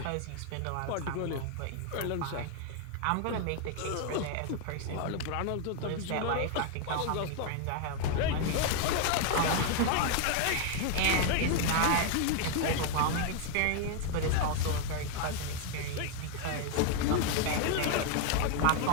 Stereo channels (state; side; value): different; both; correlation 0.01